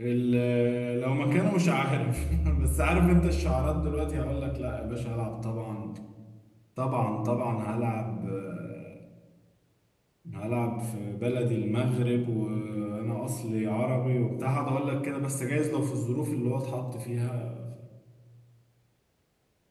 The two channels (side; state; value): both; identical; correlation 1.00